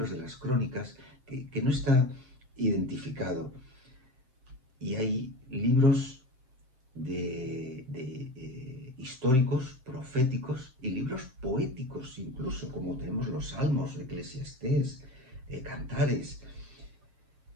de las crónicas, que no está identificado. Y hay libros históricos, proféticos y libros poéticos, incluso, como tenemos los Salmos, Eclesiastés, Cantares.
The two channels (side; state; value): left; late; 7.6 ms